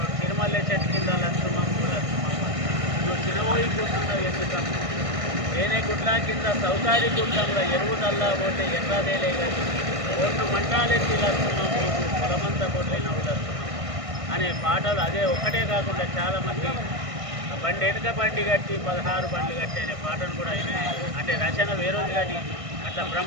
తిరుమల చెట్టు కింద లక్ష్మమ్మ నువ్వు చిన్నబోయి కూర్చున్నావు ఎందుకమ్మ, ఏనే గుడ్ల కింద సౌకారి గుడ్డంలో ఎరువు నల్లా పోతే ఎర్రదేలే కానీ ఓట్లు మంటాలెత్తి లక్ష్మమ్మ పొలమంతా పోట్లైనవు లక్ష్మమ్మ అనే పాటలు అదే ఒక్కటే కాకుండా చాలామంది బండి వెనుక బండి కట్టి 16 బండ్లు కట్టి అనే పాటను కూడా ఆయన అంటే రచన వేరేది కానీ అట్లా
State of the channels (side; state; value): left; late; 1.6 ms